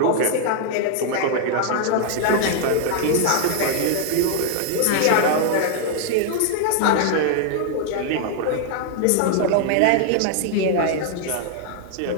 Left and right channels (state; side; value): different; both; correlation 0.00